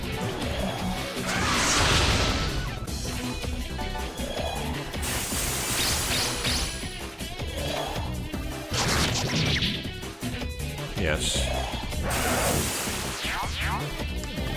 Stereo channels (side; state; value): both; identical; correlation 1.00